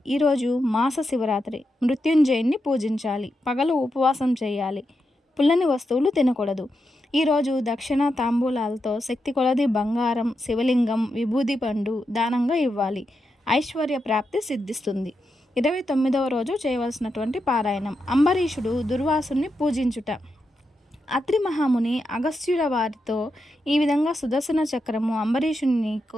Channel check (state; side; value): normal; both; correlation 0.86